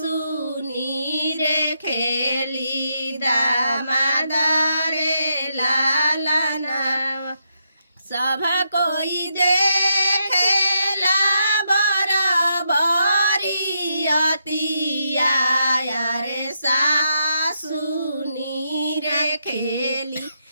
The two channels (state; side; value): inverted; both; correlation -0.81